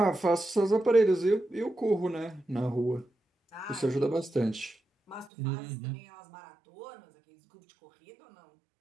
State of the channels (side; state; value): left; drops out; at 5.3 s